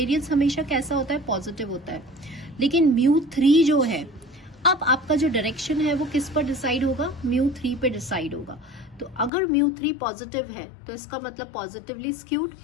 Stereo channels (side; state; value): right; drops out; at 9.3 s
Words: हमेशा कैसा होता है, पॉजिटिव होता है। लेकिन म्यू 3 जो है, अब आपका जो डायरेक्शन है वो किस पर डिसाइड होगा, म्यू 3 पे डिसाइड होगा। तो अगर म्यू 3 पॉजिटिव है तो इसका मतलब पॉजिटिवली स्क्यूड,